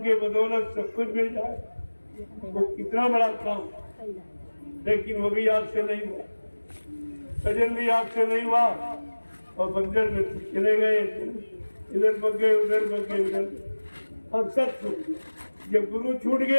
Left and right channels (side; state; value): both; inverted; correlation -1.00